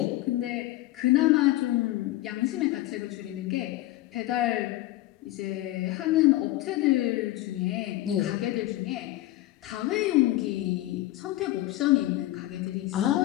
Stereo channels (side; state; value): right; quieter; 16.5 dB